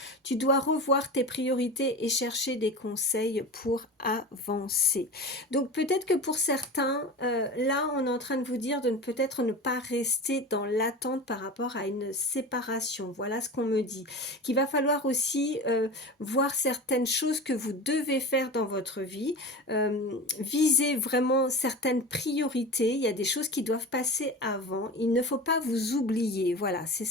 Tu dois revoir tes priorités et chercher des conseils pour avancer. Donc peut-être que pour certains, là, on est en train de vous dire de peut-être ne pas rester dans l'attente par rapport à une séparation. Voilà ce qu'on me dit. Qu'il va falloir aussi voir certaines choses que vous devez faire dans votre vie. Viser vraiment certaines priorités. Il y a des choses qui doivent passer avant. Il ne faut pas vous oublier. Voilà, c'est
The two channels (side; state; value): both; normal; correlation 0.31